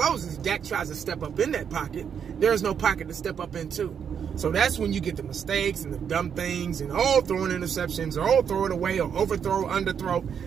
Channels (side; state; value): left; quieter; 7.6 dB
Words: Dak tries to step up in that pocket. There's no pocket to step up into. So that's when you get the mistakes and the dumb things and throwing interceptions, or throw it away, or overthrow, underthrow.